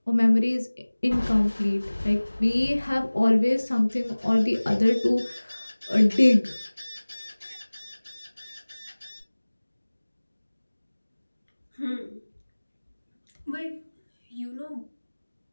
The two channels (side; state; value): both; inverted; correlation -1.00